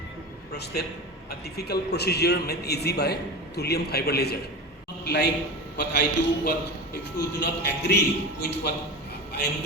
prostate, a difficult procedure made easy by thulium fiber laser. Not like what I do, what if you do not agree with what I am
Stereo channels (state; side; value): normal; both; correlation 0.27